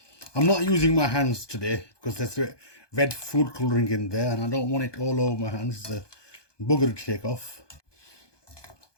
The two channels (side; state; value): right; late; 1.2 ms